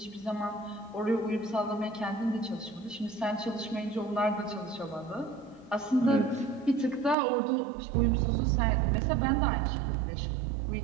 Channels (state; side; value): drops out; left; at 7.2 s